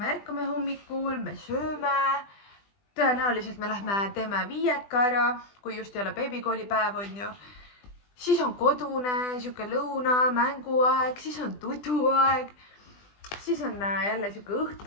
ärkame hommikul, me sööme, tõenäoliselt me lähme teeme viieka ära, kui just ei ole beebikoolipäev on ju. Siis on kodune, siuke lõuna, mänguaeg, siis on tuduaeg, siis on jälle siuke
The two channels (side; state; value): right; late; 20 ms